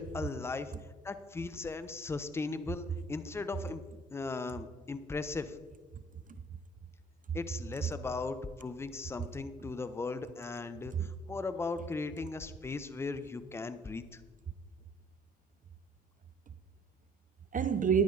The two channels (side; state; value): both; normal; correlation 0.57